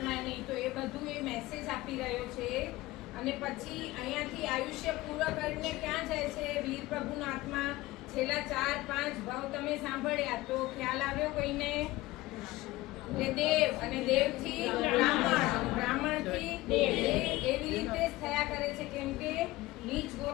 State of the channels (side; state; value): right; quieter; 18.6 dB